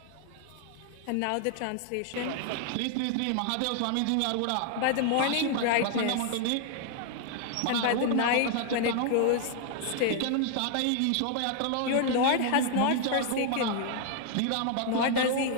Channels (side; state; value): both; different; correlation 0.00